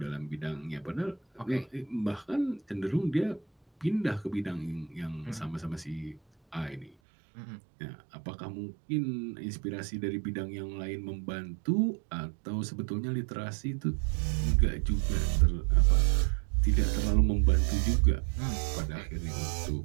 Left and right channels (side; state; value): left; drops out; at 6.9 s